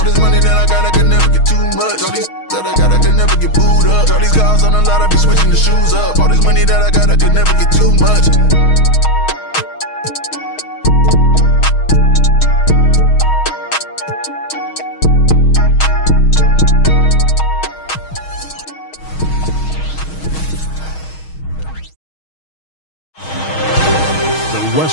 this money that I got, I can never get too much. All these that I got, I can never get booed up. All these cars on the lot, I be switching the shoes up. All this money that I got, I can never get too much.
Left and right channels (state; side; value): late; right; 6.3 ms